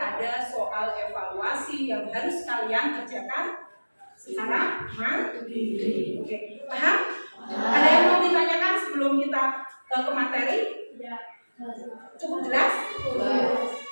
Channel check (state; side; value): inverted; both; correlation -1.00